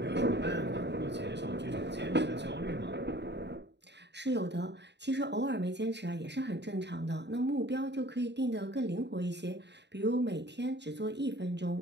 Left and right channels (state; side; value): late; left; 0.50 ms